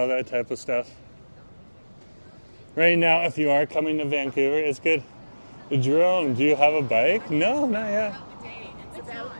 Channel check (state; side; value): inverted; both; correlation -1.00